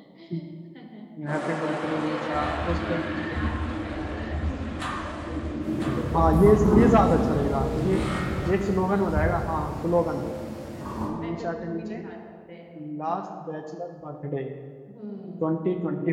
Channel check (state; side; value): identical; both; correlation 1.00